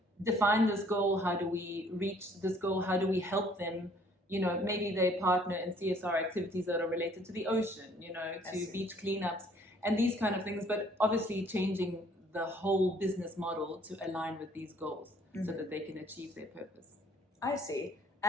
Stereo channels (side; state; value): both; normal; correlation 0.60